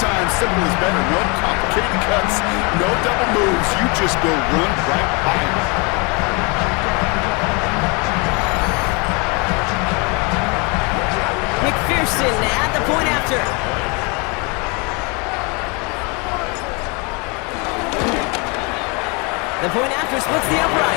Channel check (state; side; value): quieter; right; 30.6 dB